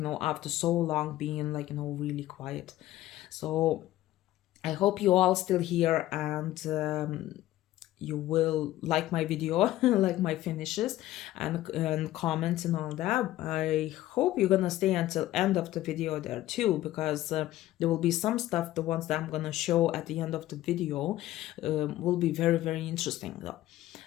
after so long being, like, really quiet. So I hope you all still here, and you will like my video, like my finishes, and comments and all that. I hope you're gonna stay until end of the video there too, because there will be some stuff, the ones that I'm gonna show at the end of the video will be very, very interesting though.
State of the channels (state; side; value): quieter; right; 15.1 dB